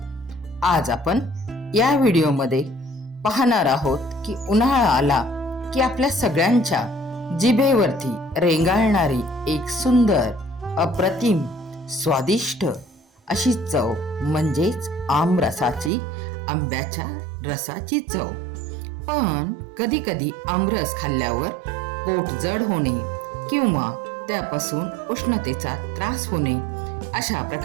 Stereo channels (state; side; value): drops out; left; at 15.9 s